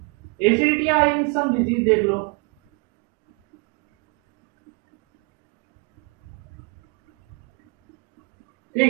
acidity या इन सम डिजीज, देख लो।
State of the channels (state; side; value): quieter; left; 33.7 dB